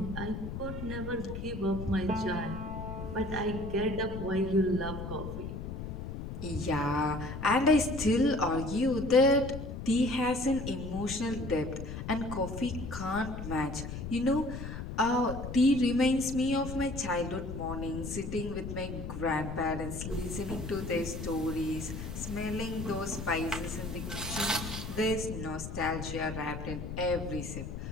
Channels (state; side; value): noise; left; rumble, 7 dB below the sound